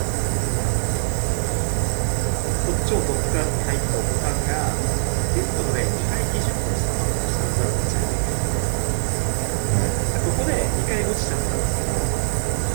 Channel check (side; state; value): left; silent; digital silence